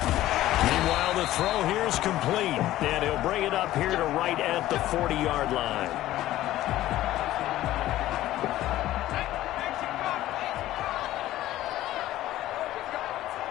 Meanwhile, the throw here is complete, and he'll bring it up here to right at the 40-yard line.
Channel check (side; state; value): right; quieter; 14.7 dB